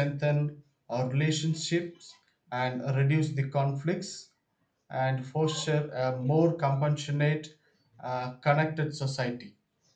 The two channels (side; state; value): both; identical; correlation 1.00